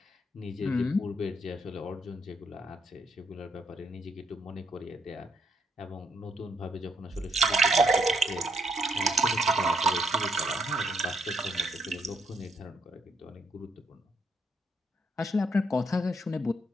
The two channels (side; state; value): both; normal; correlation 0.74